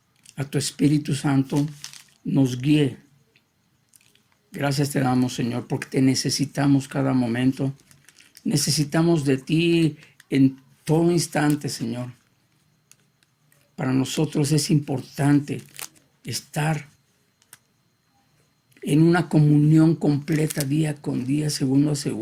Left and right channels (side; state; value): both; identical; correlation 1.00